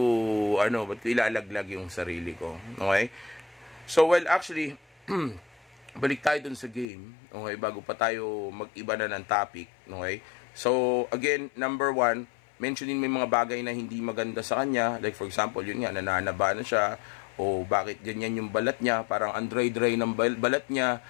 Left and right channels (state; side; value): drops out; right; at 6.9 s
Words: ilalaglag yung sarili ko? Okay? So, well, actually, balik tayo dun sa game. Okay? Bago pa tayo mag-iba na ng topic. Okay? So, again, number 1, mentionin mo yung mga bagay na hindi maganda sa kanya. Like, for example, yun nga, nananaba na siya. O bakit ganyan yung balat niya, parang dry ng balat niya,